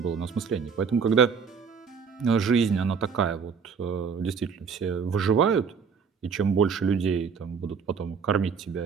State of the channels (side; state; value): left; quieter; 6.0 dB